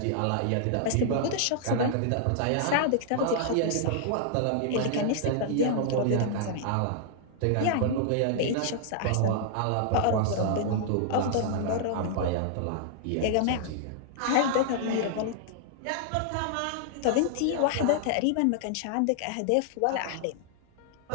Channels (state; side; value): different; both; correlation -0.01